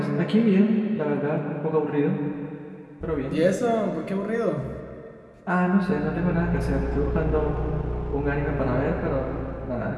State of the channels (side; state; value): both; identical; correlation 1.00